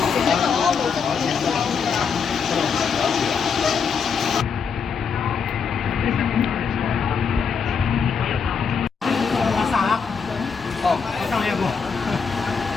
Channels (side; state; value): right; quieter; 6.0 dB